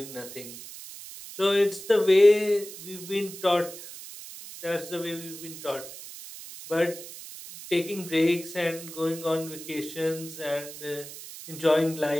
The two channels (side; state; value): right; noise; hiss, 13 dB below the sound